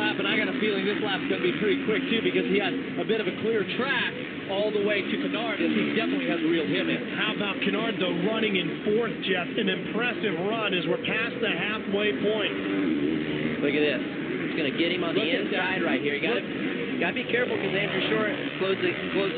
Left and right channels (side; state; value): both; identical; correlation 1.00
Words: and I got a feeling this lap's going to be pretty quick, too, because he has a bit of a clear track all the way to Kennard, and he definitely has reeled him in. How about Kennard, though, running in 4th, Jeff? An impressive run as we're past the halfway point. Look at this. It's going to get him on the inside right here. You got to be careful because Andrew Short closed